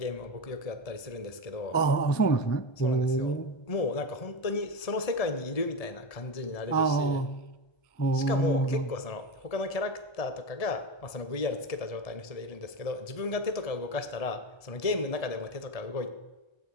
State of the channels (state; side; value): late; right; 1.7 ms